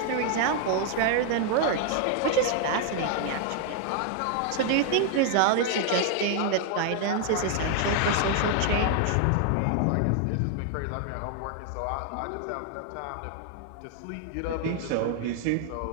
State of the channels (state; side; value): different; both; correlation 0.00